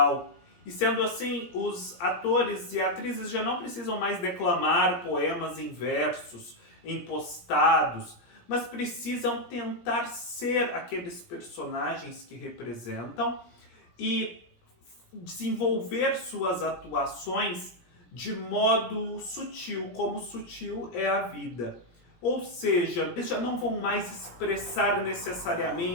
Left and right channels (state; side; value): late; right; 17 ms